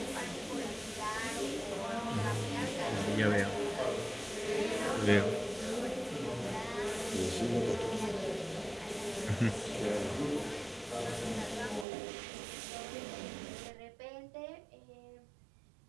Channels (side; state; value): left; drops out; at 11.9 s